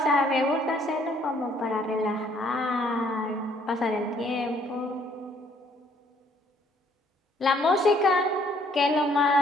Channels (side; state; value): both; normal; correlation 0.64